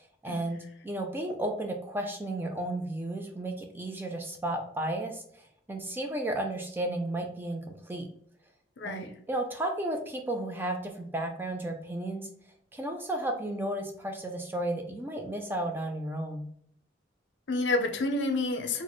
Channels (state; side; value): normal; both; correlation 0.43